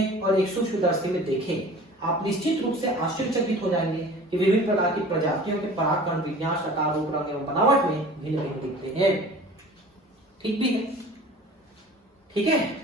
और एक सूक्ष्मदर्शी में देखें, आप निश्चित रूप से आश्चर्यचकित हो जाएंगे कि विभिन्न प्रकार की प्रजातियों के परागकण विन्यास, आकार, रूप, रंग एवं बनावट में भिन्न भिन्न दिखते हैं। ठीक भी है, ठीक है,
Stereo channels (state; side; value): normal; both; correlation 0.43